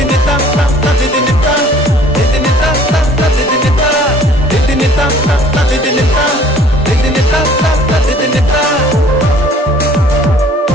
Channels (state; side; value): normal; both; correlation 0.53